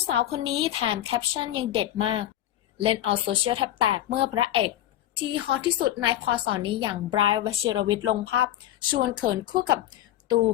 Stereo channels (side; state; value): right; quieter; 12.9 dB